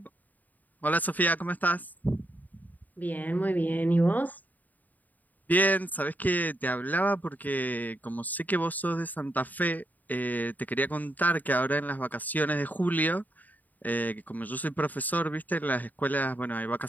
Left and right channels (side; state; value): right; late; 0.082 ms